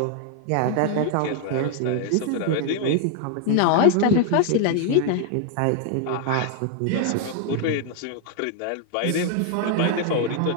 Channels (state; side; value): different; both; correlation 0.00